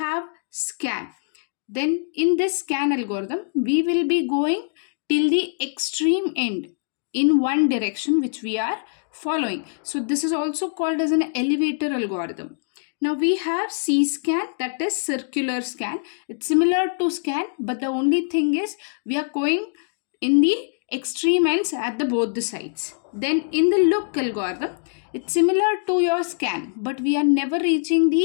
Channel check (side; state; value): right; silent; digital silence